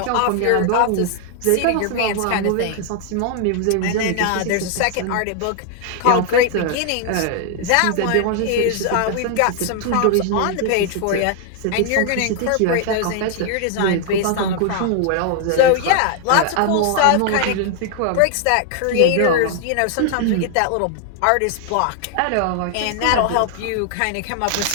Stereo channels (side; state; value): both; different; correlation 0.00